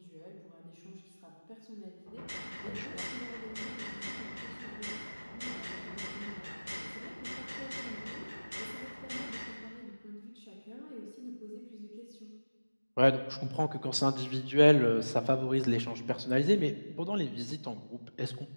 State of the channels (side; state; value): both; inverted; correlation -1.00